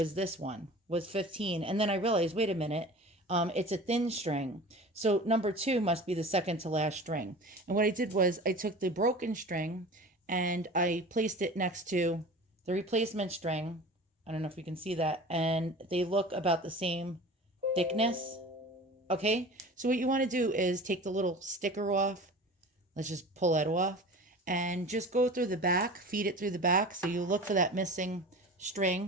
this one, was 15. And then I realized, wait a minute, it's a thin string. So number 2 must be the second to last string. And what I did was I took the broken string and I placed it next to the replacement string I don't know if you can see that. And they look about the same thickness. Okay, so what you want to do is take the little sticker off. Let's just pull that off and just go through the back, feed it through the back. So you look for that missing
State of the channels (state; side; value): normal; both; correlation 0.37